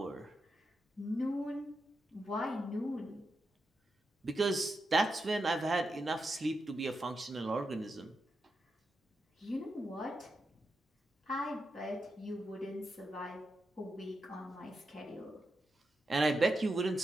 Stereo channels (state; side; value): normal; both; correlation 0.87